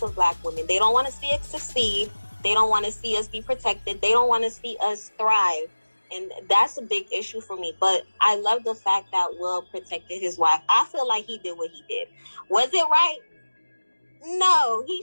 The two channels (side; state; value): both; inverted; correlation -1.00